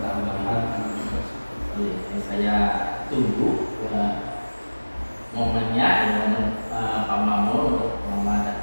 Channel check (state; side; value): inverted; both; correlation -1.00